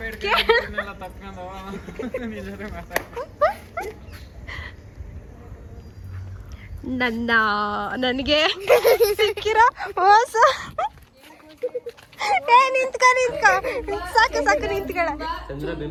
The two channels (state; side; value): identical; both; correlation 1.00